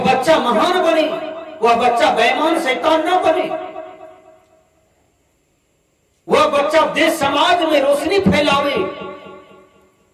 बच्चा महान बने, वह बच्चा बेईमान शैतान न बने, वह बच्चा देश समाज में रोशनी फैलावे,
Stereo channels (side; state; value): both; identical; correlation 1.00